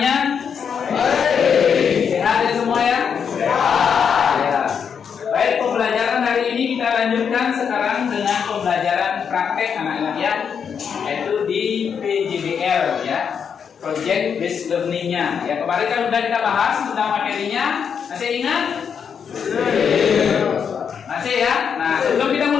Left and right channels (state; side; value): quieter; right; 7.0 dB